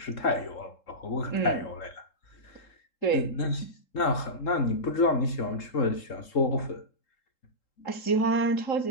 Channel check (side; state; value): right; late; 3.7 ms